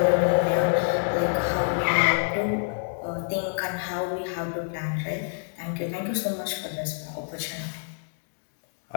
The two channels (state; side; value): silent; right; digital silence